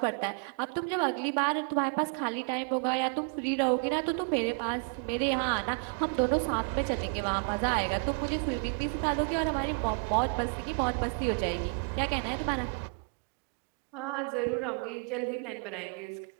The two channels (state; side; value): quieter; left; 38.6 dB